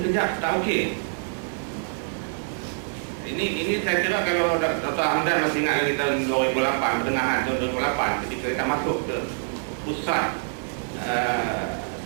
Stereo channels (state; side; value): silent; left; digital silence